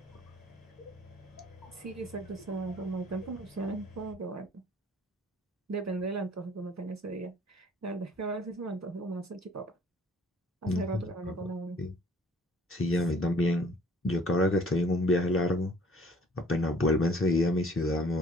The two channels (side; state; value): both; normal; correlation 0.56